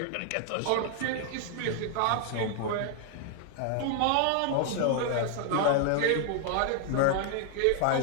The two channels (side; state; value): both; different; correlation 0.00